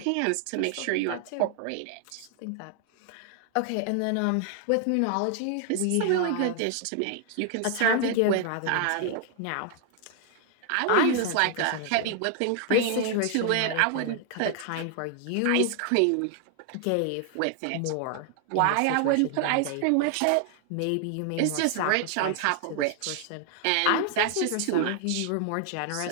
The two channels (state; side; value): different; both; correlation 0.00